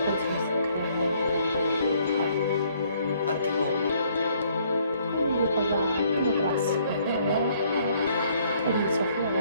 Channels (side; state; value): both; inverted; correlation -0.65